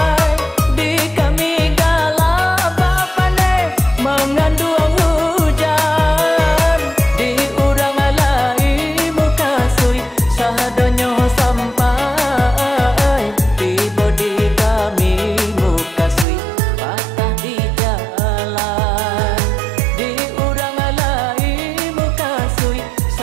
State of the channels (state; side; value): drops out; left; at 16.2 s